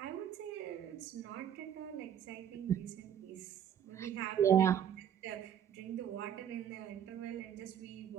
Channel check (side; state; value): left; quieter; 9.3 dB